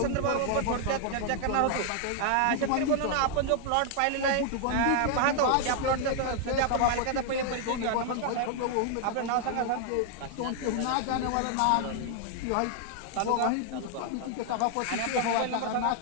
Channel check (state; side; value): different; both; correlation 0.00